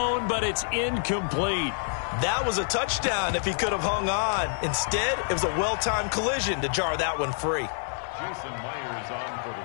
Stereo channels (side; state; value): right; silent; 60 dB below the other